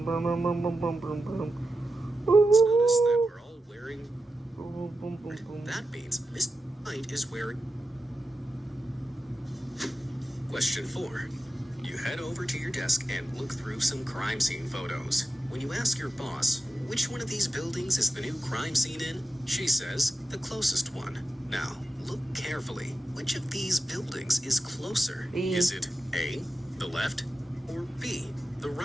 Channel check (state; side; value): normal; both; correlation 0.90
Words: that we're all wearing. That means Mr. White is wearing. Question 4. You head over to your desk and look through some crime scene photos. When you ask your boss, which one of these buildings is the new crime scene in? She says, the closest one. Now, look carefully. Which of these buildings is closer? B. Is it A, the left, or B, the